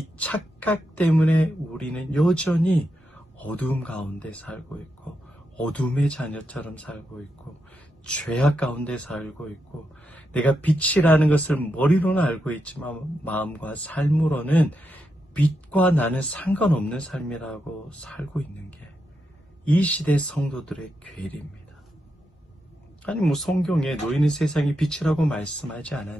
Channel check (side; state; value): both; normal; correlation 0.85